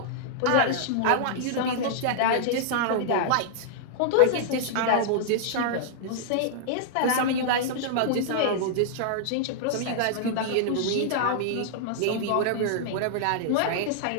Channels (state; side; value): different; both; correlation -0.01